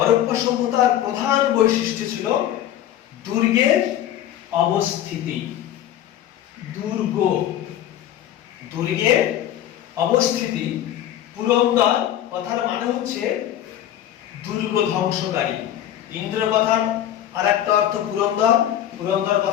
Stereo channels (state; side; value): quieter; right; 11.6 dB